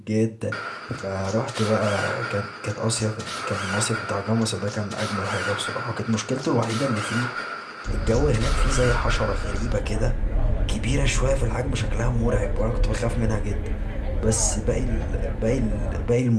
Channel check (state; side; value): identical; both; correlation 1.00